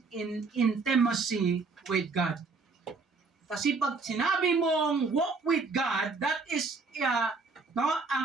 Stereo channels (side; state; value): left; quieter; 4.2 dB